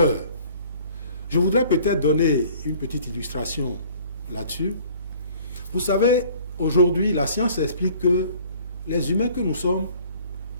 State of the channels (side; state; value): both; inverted; correlation -0.53